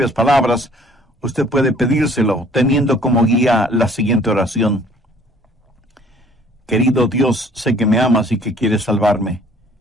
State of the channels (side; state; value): both; normal; correlation 0.56